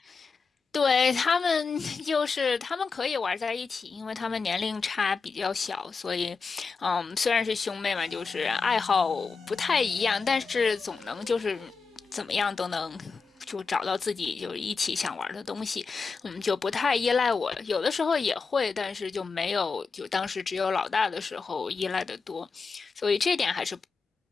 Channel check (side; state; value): right; quieter; 4.8 dB